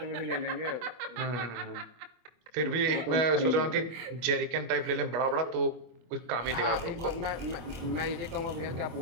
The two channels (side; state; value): left; late; 25 ms